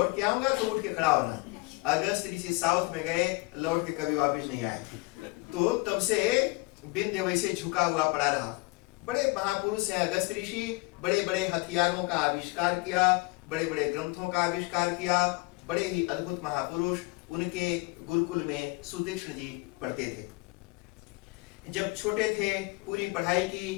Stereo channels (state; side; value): quieter; right; 25.6 dB